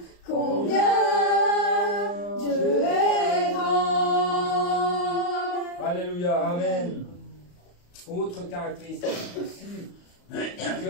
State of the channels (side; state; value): right; late; 34 ms